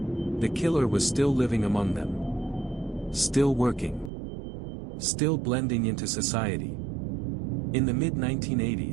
The killer was still living among them. Still working. Still blending into society. In the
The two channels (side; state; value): left; drops out; at 4.1 s